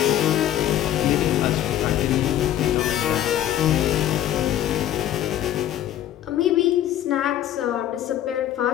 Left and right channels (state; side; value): quieter; right; 11.9 dB